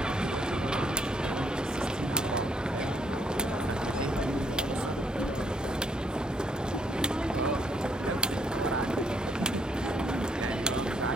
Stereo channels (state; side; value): normal; both; correlation 0.70